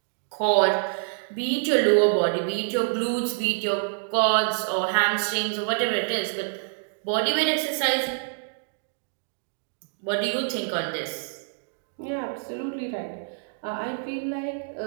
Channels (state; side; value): silent; left; digital silence